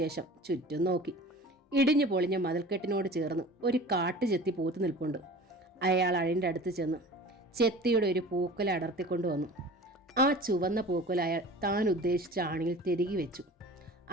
ചുറ്റും നോക്കി. ഇടിഞ്ഞു പൊളിഞ്ഞ മതിൽക്കെട്ടിനോട് ചേർന്ന് ഒരു കാട്ടുചെത്തി പൂത്തു നിൽപ്പുണ്ട്. അയാൾ അഴിൻ്റെ അടുത്ത് ചെന്ന് ചെത്തിയുടെ ഒരു പൂക്കുല അടർത്തിക്കൊണ്ടുവന്നു. ആ ചുവന്ന പൂക്കുല അയാൾ താൻ ഉദ്ദേശിച്ച ആണിയിൽ തിരികെ വെച്ചു.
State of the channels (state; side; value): normal; both; correlation 0.40